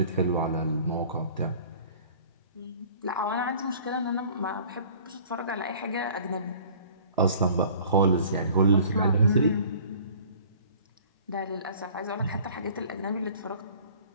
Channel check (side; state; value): both; inverted; correlation -0.49